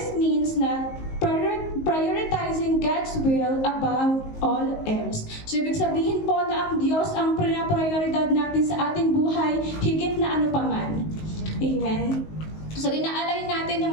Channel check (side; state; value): right; late; 19 ms